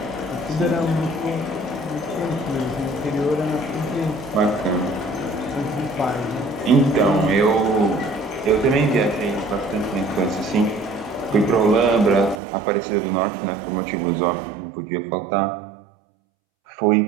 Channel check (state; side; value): drops out; left; at 12.4 s